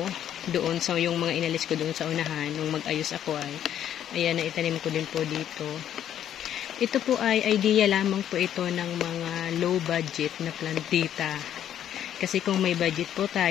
doon sa yung mga inalis ko doon sa unahan nung mag-ayos ako ay ayan, naitanim ko din po dito. Ito po ay idea lamang po ito ng mga low budget na plantita. Kasi kung may budget po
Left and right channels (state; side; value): quieter; right; 10.4 dB